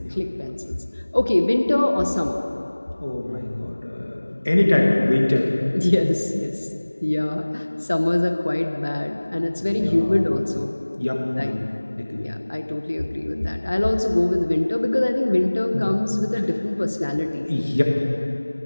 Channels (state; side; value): inverted; both; correlation -1.00